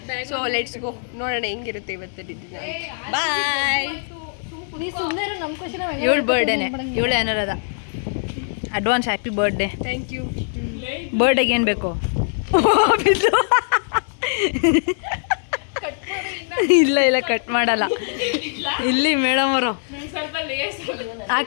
ಸೊ ಲೆಟ್ಸ್ ಗೋ, ನೋಡೋಣ ಹೆಂಗಿರುತ್ತೆ ಇವತ್ತು ದಿನ. ಬಾಯ್. ಇವಳು ಬರ್ಡೇನೆ, ಇವಳು Anuradha. Advance happy birthday. Thank you. ಬರ್ಡೇಗೆ ಏನು ಬೇಕು? ಇಲ್ಲ ಇಲ್ಲ, ಕಟ್ ಮಾಡಲ್ಲ. ಇಲ್ಲಿ ಮೇಡಮ್ ಅವರು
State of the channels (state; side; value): silent; right; digital silence